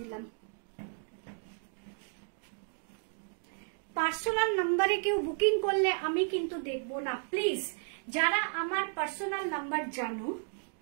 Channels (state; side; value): silent; left; 55 dB below the other